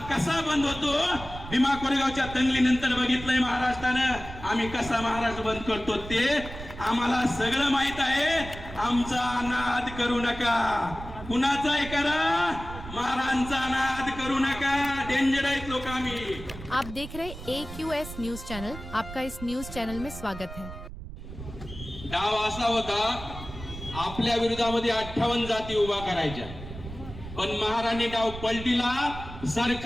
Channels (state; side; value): noise; right; rumble, 12 dB below the sound